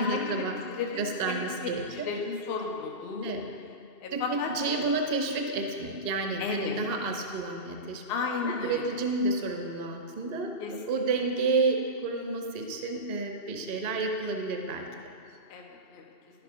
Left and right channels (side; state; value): right; late; 2.7 ms